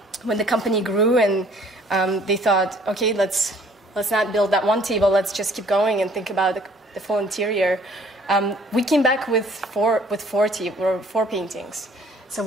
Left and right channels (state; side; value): normal; both; correlation 0.57